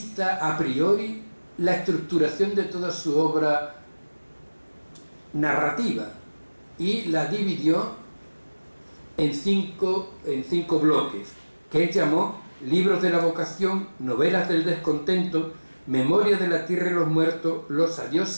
a priori la estructuración de toda su obra narrativa y la dividió en cinco bloques, que él llamó Libros de la vocación, Novelas del descontento, Memoria de la tierra y los muertos, Los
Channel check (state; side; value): inverted; both; correlation -1.00